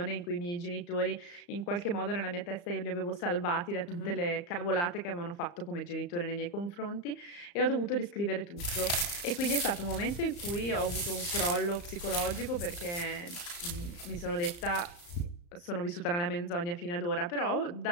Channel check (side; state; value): right; late; 35 ms